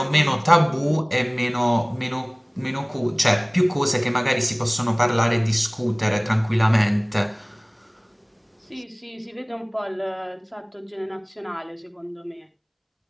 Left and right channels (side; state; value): both; identical; correlation 1.00